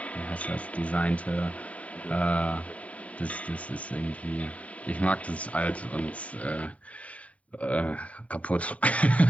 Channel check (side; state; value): right; late; 0.067 ms